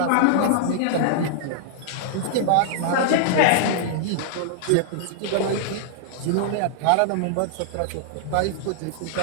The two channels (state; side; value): different; both; correlation -0.01